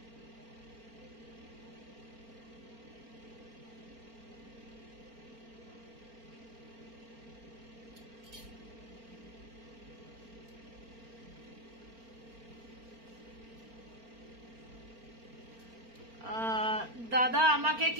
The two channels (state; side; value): late; left; 4.4 ms